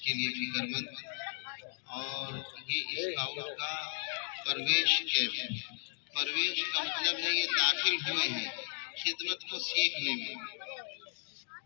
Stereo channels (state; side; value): silent; right; digital silence